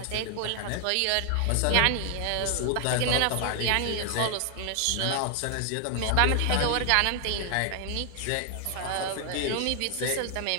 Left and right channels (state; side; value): different; both; correlation 0.00